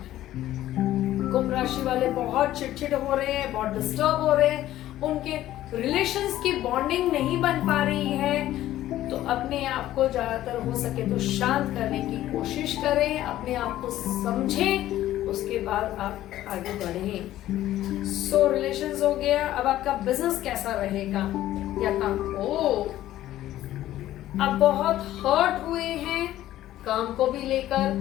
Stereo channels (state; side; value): quieter; right; 13.8 dB